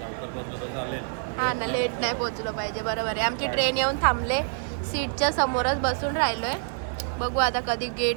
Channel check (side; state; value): left; silent; digital silence